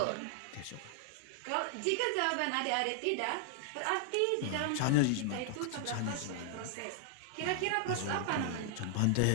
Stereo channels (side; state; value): both; different; correlation -0.01